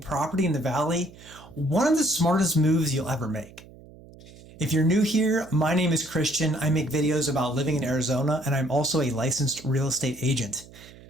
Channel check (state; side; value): noise; right; hum, 21 dB below the sound